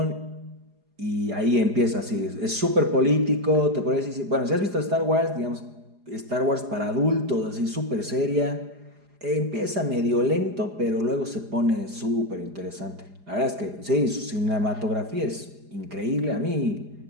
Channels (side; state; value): left; late; 4.9 ms